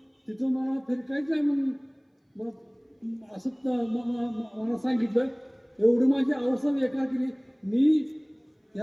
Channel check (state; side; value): identical; both; correlation 1.00